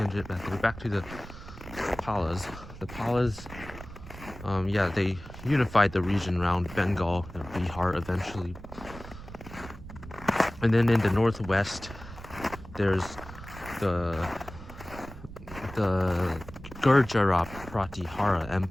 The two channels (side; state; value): right; noise; rumble, 14 dB below the sound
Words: back there. Back to the Palas. The Palas, they unified the region around Bengal and Bihar eventually. And then in the northwest, there's the Gurjara Pratihara